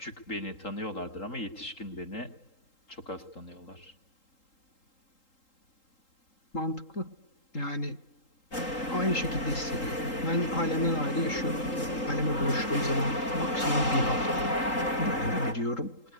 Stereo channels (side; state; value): right; late; 3.8 ms